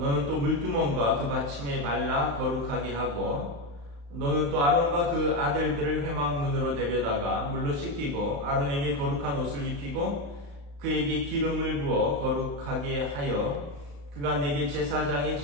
또 물두멍과 그 받침에 발라 거룩하게 하고 너는 또 아론과 그 아들들을 회막문으로 데려다가 물로 씻기고 아론에게 거룩한 옷을 입히고 그에게 기름을 부어 거룩하게 하여 그가 내게 제사장의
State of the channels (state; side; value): late; left; 35 ms